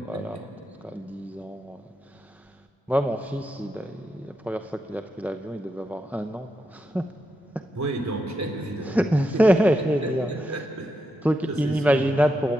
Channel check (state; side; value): normal; both; correlation 0.85